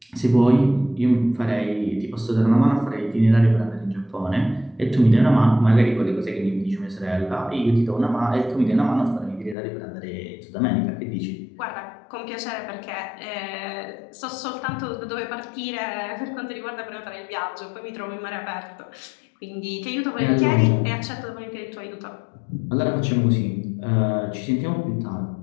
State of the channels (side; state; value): right; drops out; at 9.6 s